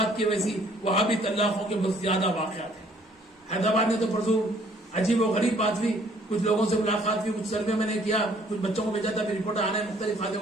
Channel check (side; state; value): both; normal; correlation 0.61